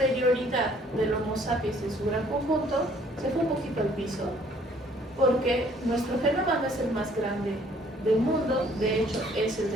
del Homo sapiens en su gran conjunto se fue un poquito al piso, porque nuestro genoma no es el más grande del mundo, de hecho es el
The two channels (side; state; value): both; normal; correlation 0.60